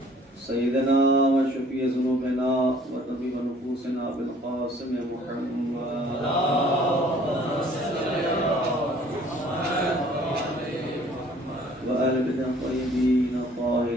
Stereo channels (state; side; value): normal; both; correlation 0.55